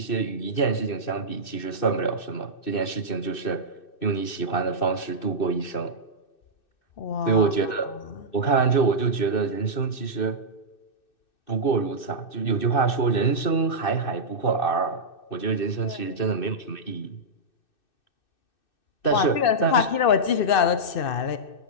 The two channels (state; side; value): late; right; 2.6 ms